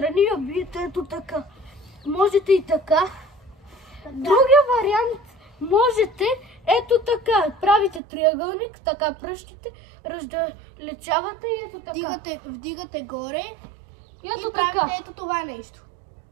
я биете ето така. Можете и така. Другия вариант можете ето така. Правите триъгълник, така пръщите, раздалечавате и ето така. Вдигате горе и ето правите така. Ето това нещо.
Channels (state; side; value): drops out; left; at 8.0 s